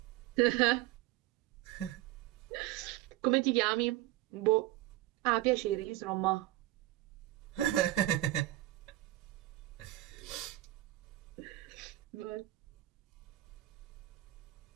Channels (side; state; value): left; quieter; 16.2 dB